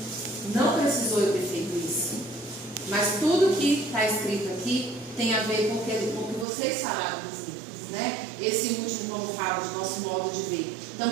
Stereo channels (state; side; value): drops out; left; at 6.5 s